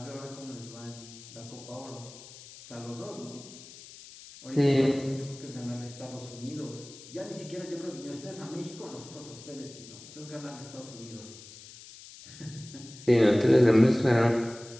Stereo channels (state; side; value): noise; left; hiss, 17 dB below the sound